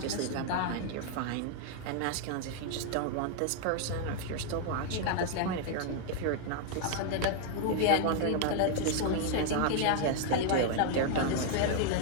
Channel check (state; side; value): different; both; correlation 0.00